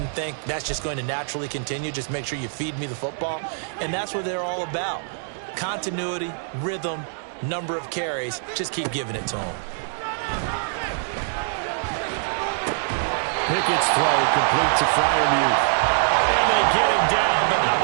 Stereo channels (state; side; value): silent; left; digital silence